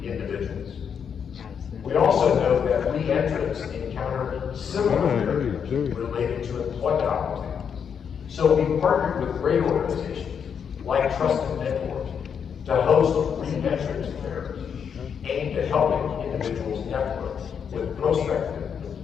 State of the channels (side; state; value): right; quieter; 7.3 dB